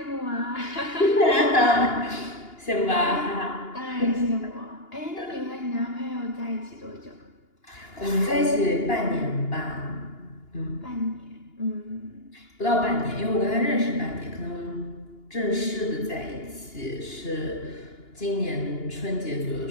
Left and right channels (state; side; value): late; right; 2.8 ms